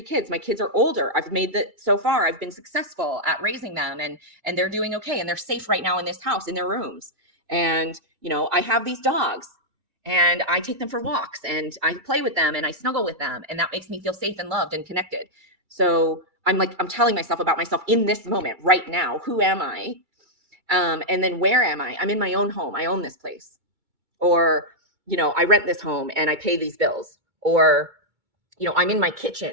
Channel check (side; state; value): left; late; 2.3 ms